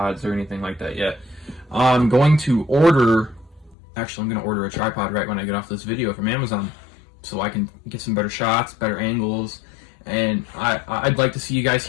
or anything like that yet. I'm going to order... Actually, I'm going to order a tripod right when I get off this video from Amazon, so I can get some better shots, better angles, and I'd like to see you guys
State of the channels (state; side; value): drops out; right; at 3.8 s